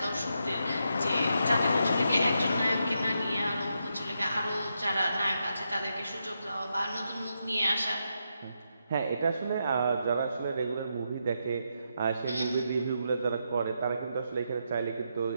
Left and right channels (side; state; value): both; inverted; correlation -0.83